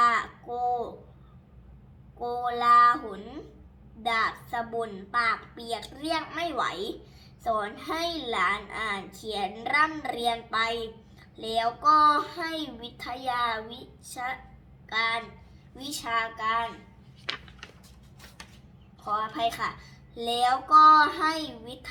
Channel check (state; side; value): identical; both; correlation 1.00